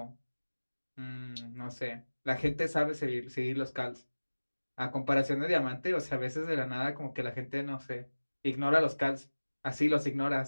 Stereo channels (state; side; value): inverted; both; correlation -1.00